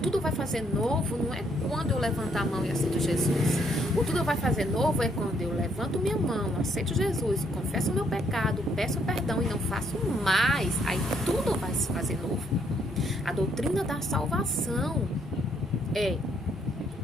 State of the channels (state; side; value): normal; both; correlation 0.70